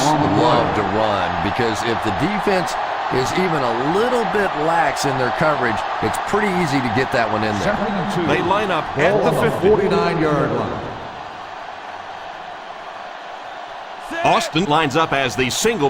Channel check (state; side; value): identical; both; correlation 1.00